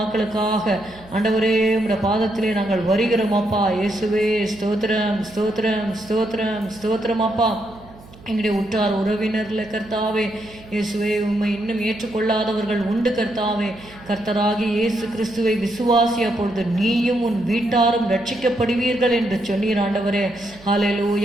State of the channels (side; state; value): right; noise; hum, 22 dB below the sound